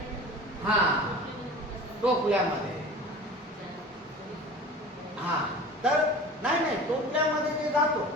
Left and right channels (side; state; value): both; normal; correlation 0.38